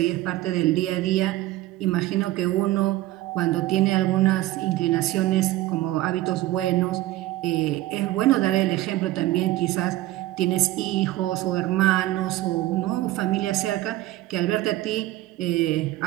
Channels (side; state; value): left; quieter; 16.4 dB